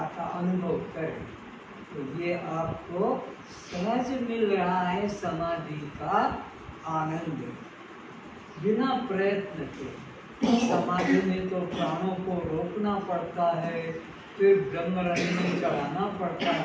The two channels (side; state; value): both; identical; correlation 1.00